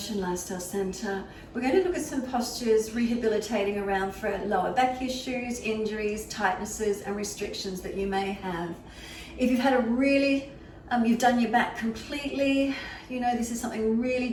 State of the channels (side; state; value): both; identical; correlation 1.00